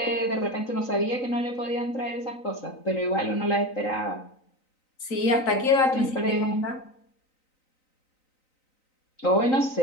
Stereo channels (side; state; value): right; late; 3.9 ms